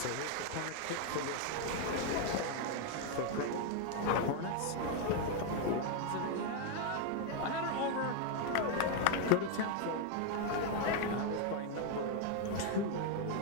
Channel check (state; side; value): different; both; correlation 0.01